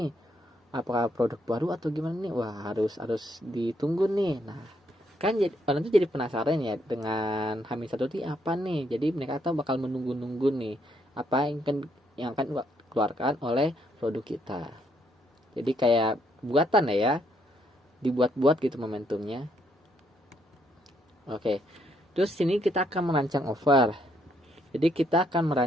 apakah produk baru atau gimana nih, wah harus ditunggu nih. Nah kan jadi orang tuh jadi penasaran ya dengan H-1 itu apa nih, jadi mereka tuh bakal menunggu-nunggu nih apa yang akan keluarkan oleh produk kita. Jadi kayak buatan ya, dibuat-buat gitu momentumnya. Oke, terus sini kita akan merancang offer. Jadi kita akan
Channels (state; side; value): normal; both; correlation 0.73